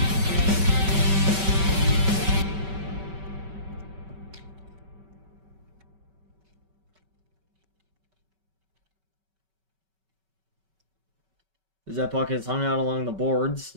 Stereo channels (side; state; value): left; late; 5.2 ms